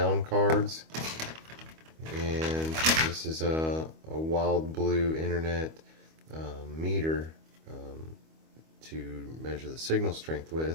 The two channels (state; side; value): late; left; 25 ms